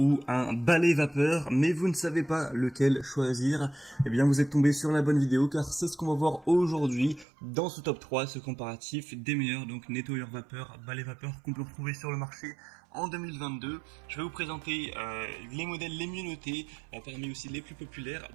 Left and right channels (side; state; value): left; drops out; at 7.2 s